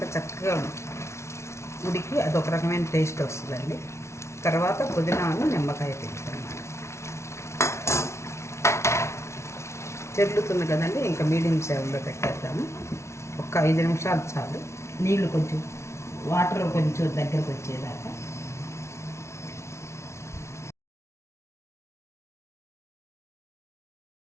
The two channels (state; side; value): late; right; 0.13 ms